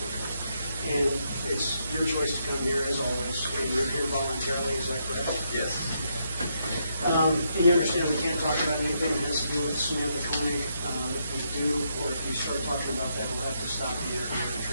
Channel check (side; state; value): both; inverted; correlation -0.78